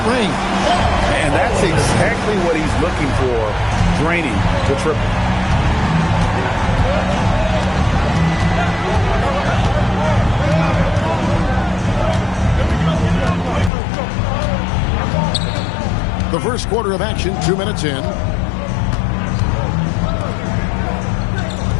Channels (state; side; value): drops out; right; at 13.7 s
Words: range. And that's exactly what he's looking for, draining the triple. The first quarter of action, 2 minutes in.